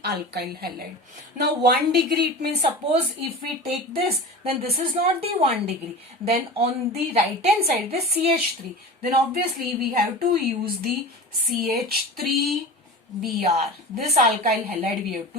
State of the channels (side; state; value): both; normal; correlation 0.32